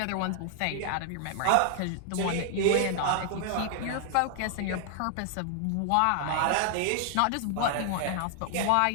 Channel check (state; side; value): different; both; correlation 0.00